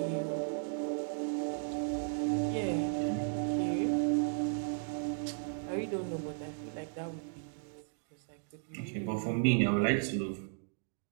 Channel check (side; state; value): left; silent; digital silence